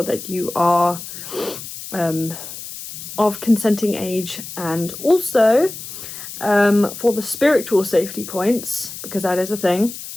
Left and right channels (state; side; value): noise; left; hiss, 11 dB below the sound